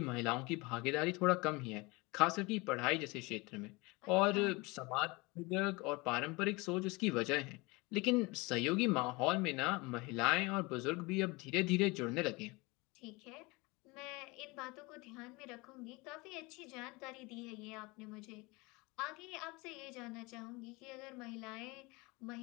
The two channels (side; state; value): right; quieter; 25.1 dB